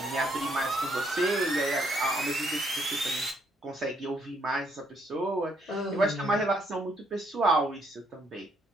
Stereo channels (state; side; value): normal; both; correlation 0.71